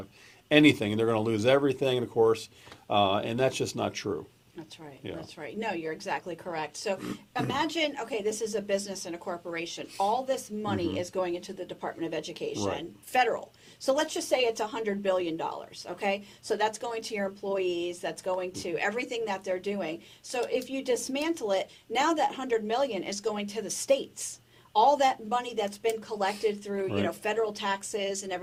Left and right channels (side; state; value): both; identical; correlation 1.00